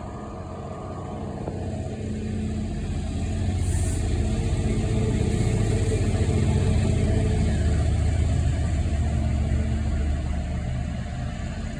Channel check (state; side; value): identical; both; correlation 1.00